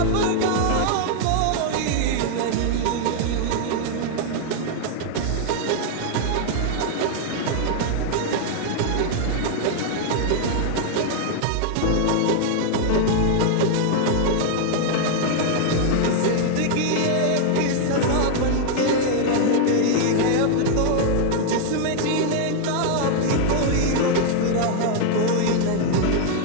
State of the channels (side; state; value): both; different; correlation 0.00